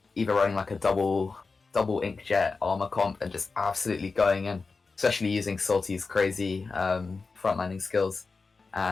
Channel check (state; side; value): quieter; right; 4.3 dB